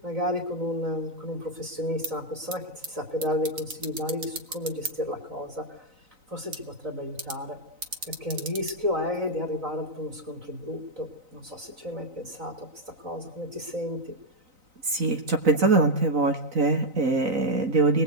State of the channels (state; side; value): late; left; 3.9 ms